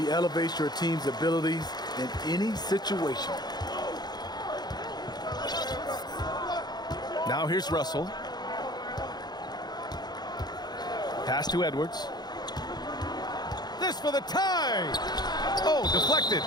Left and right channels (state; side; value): late; right; 0.20 ms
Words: elevates your team's abilities in any situation. Now here's Russell. Pass to Edwards. This for the tie. Oh, deflected.